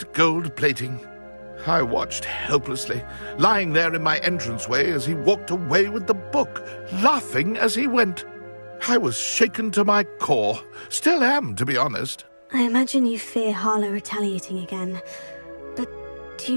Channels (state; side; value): inverted; both; correlation -1.00